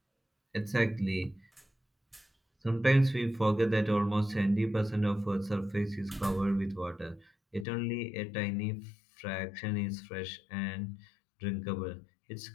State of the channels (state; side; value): drops out; right; at 7.7 s